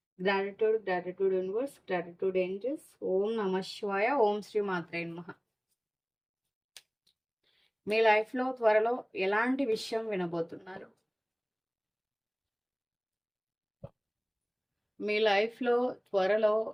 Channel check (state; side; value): identical; both; correlation 1.00